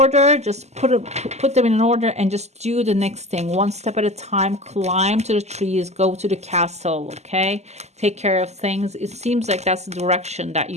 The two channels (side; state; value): left; late; 0.33 ms